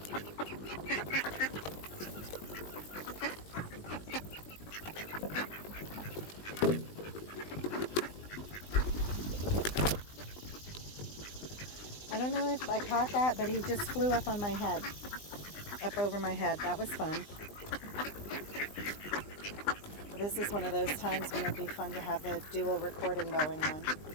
I don't know if I caught that, but he just flew up on my head. Up over my head. That was fun. This is one of those times when it'd be fun to have a dual recording going on.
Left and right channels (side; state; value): right; late; 20 ms